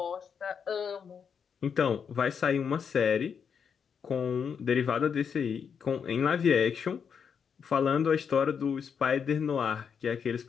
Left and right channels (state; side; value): quieter; right; 6.8 dB